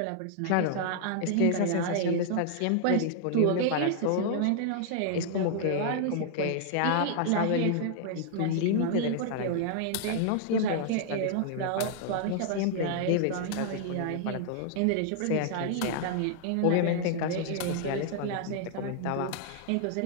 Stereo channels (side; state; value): both; different; correlation -0.01